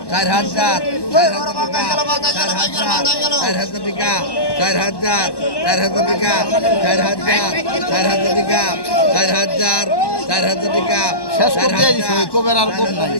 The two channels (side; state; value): right; late; 1.1 ms